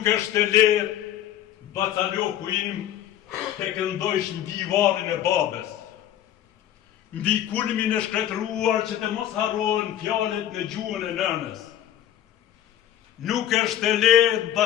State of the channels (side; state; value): right; quieter; 11.6 dB